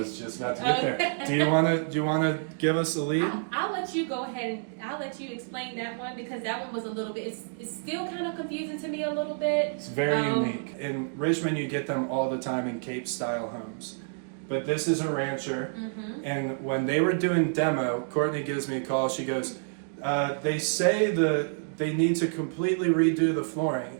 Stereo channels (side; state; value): left; silent; digital silence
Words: just about to get there. Do you want to give us the lead? I'll let you go ahead and I'll let you explain that one, because that one was a little bit, it's still kind of confusing to me a little bit. It's very unique. In Richmond, you get them all the time in Cape style homes. But this is a rancher. And when they were doing demo, Courtney gives me a call. She goes, they say they need to completely redo the flooring.